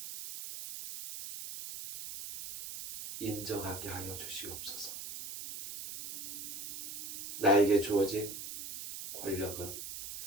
인정하게 하여 주시옵소서. 나에게 주어진 권력은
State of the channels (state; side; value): noise; right; hiss, 8 dB below the sound